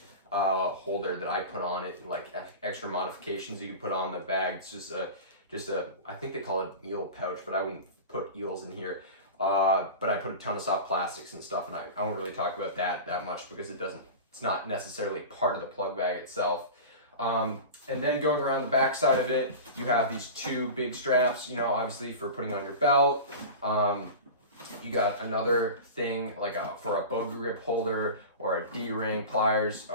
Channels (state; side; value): inverted; both; correlation -0.30